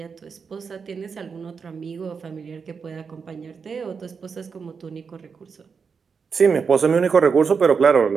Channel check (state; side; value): quieter; left; 5.7 dB